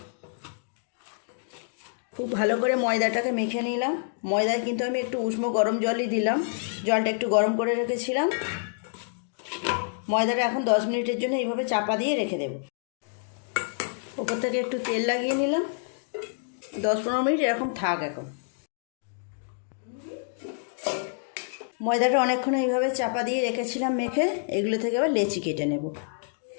খুব ভালো করে ময়দাটাকে মেখে নিলাম। ময়দায় কিন্তু আমি একটু উষ্ণ গরম জলই দিলাম, জলটা একটু গরম করে রেখেছিলাম। ময়দাটা এখন 10 মিনিটের জন্য এইভাবে চাপা দিয়ে রেখে দেব। ওপর থেকে একটু তেল লাগিয়ে নিলাম। 10-15 মিনিট এরকম থাক। এখন ময়দাটা অনেকক্ষণ এইভাবে চাপা দিয়ে রেখেছিলাম মেখে, এগুলো থেকে এবার লেচি কেটে নেব।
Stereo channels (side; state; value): right; silent; digital silence